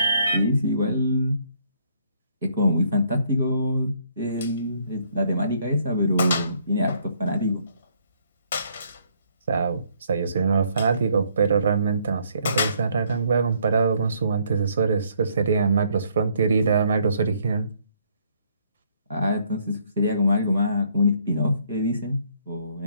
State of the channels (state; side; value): inverted; both; correlation -0.67